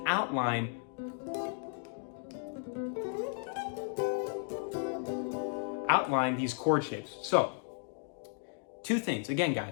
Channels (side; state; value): right; silent; 55 dB below the other